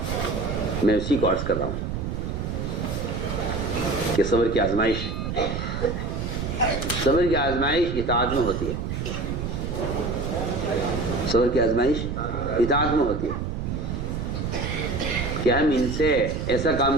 میں اسی کو عرض کر رہا ہوں کہ صبر کی آزمائش اطاعت میں ہوتی ہے، صبر کی آزمائش اطاعت میں ہوتی ہے کہ ہم ان سے ایسا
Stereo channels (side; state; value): right; noise; rumble, 3 dB below the sound